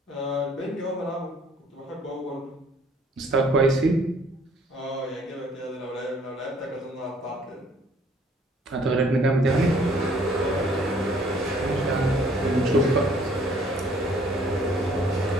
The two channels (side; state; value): both; normal; correlation 0.59